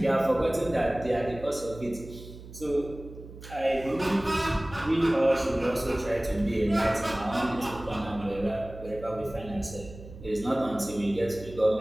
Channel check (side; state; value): right; noise; hum, 15 dB below the sound